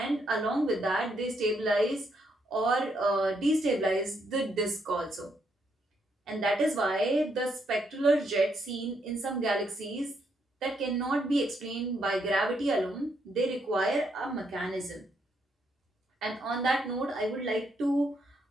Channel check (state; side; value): normal; both; correlation 0.76